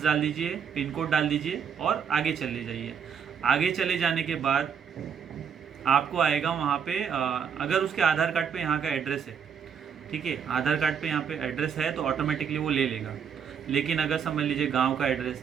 डाल दीजिए, पिन कोड डाल दीजिए और आगे चले जाइए। आगे चले जाने के बाद आपको आएगा वहाँ पे अगर उसके आधार कार्ड पे यहाँ का एड्रेस है, ठीक है, आधार कार्ड पे यहाँ पे एड्रेस है तो ऑटोमेटिकली वो ले लेगा। लेकिन अगर समझ लीजिए गांव का एड्रेस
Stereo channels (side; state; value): left; quieter; 7.3 dB